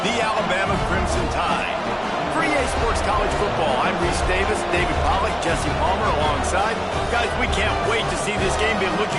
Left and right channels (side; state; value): both; identical; correlation 1.00